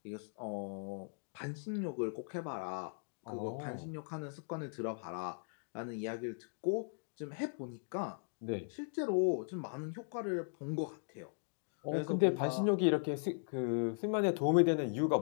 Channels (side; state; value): right; silent; digital silence